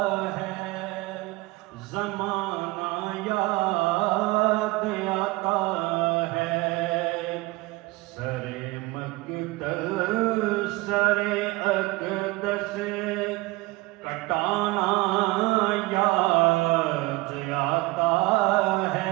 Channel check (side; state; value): left; quieter; 22.0 dB